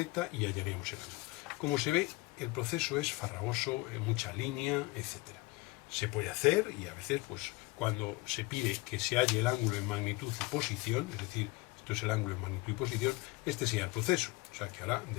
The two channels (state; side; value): quieter; right; 22.6 dB